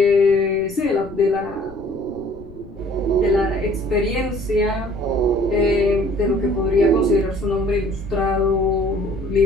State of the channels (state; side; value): noise; left; rumble, 20 dB below the sound